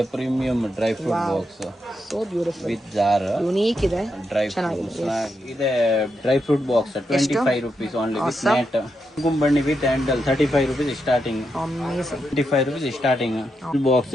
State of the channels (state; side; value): normal; both; correlation 0.84